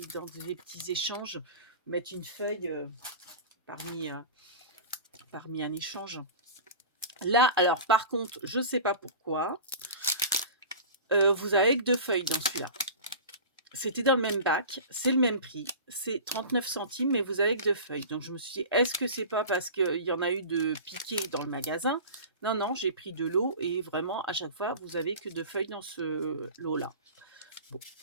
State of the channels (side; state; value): both; inverted; correlation -0.34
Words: petits échanges, mettre une feuille parmi un échange. Là, alors par contre, je ne sais pas pourquoi, vous avez que 2 feuilles dans celui-là. C'était dans le même bac, c'est le même prix, c'est 39 centimes, mais vous avez que 2 feuilles. Donc je me suis dit, est-ce que c'est pas parce qu'il y en a eu de piqués dans le magasin? Non, non, j'ai pris de l'eau et vraiment, à chaque fois, vous avez que 2 feuilles dans ce lot-là. Bon.